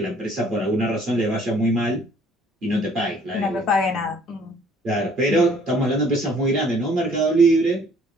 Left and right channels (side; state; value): both; normal; correlation 0.58